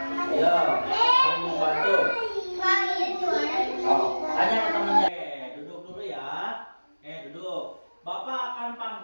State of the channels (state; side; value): inverted; both; correlation -1.00